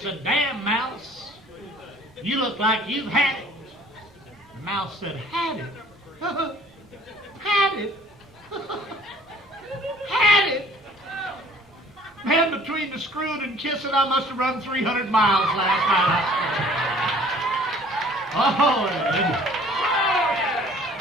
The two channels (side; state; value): both; normal; correlation 0.54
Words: "Damn, mouse, you look like you've had it." The mouse said, "Had it? Had it? Had it? Man, between the screwing and kissing, I must have run 300 miles last night."